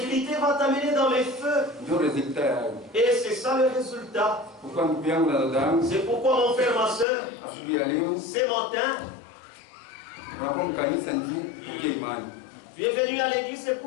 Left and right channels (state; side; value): drops out; right; at 7.1 s